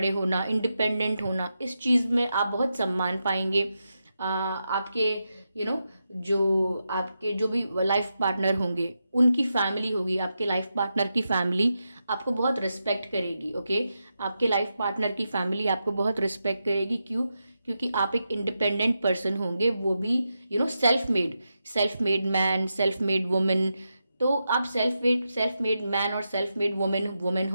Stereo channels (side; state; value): both; inverted; correlation -0.87